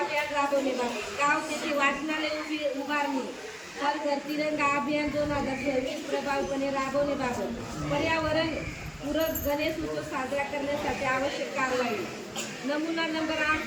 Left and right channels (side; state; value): both; identical; correlation 1.00